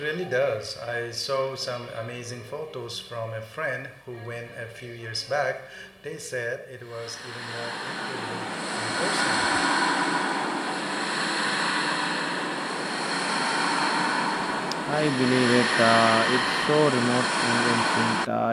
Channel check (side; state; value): both; identical; correlation 1.00